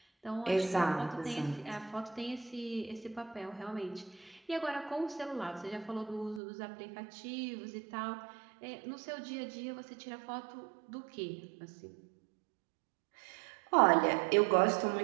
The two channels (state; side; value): drops out; left; at 6.4 s